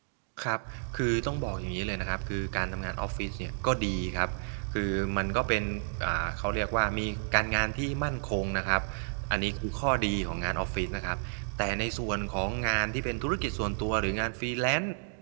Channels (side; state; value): left; silent; digital silence